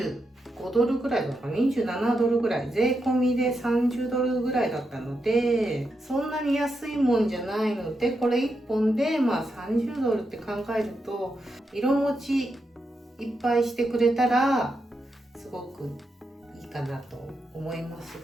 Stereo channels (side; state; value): both; normal; correlation 0.85